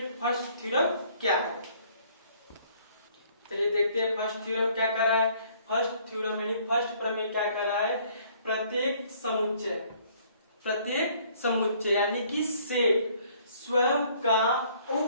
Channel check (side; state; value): both; inverted; correlation -0.60